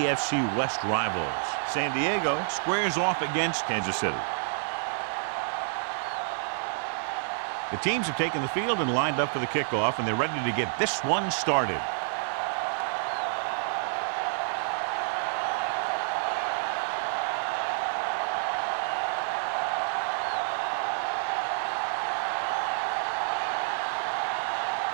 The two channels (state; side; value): silent; left; digital silence